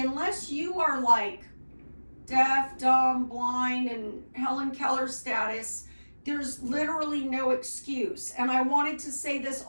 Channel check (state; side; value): inverted; both; correlation -1.00